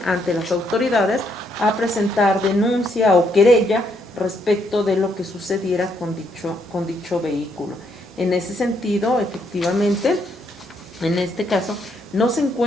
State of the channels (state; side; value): normal; both; correlation 0.73